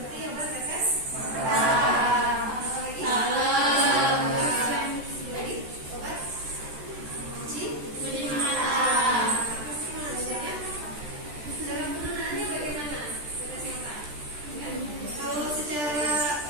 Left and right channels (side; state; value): left; late; 14 ms